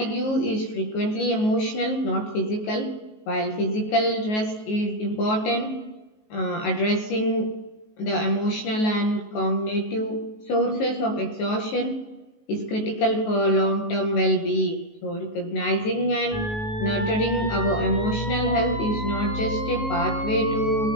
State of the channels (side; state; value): right; late; 19 ms